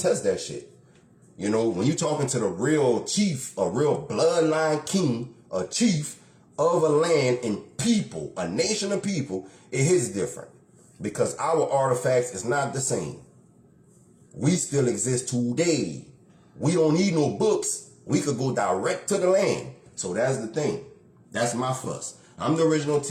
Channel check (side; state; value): both; identical; correlation 1.00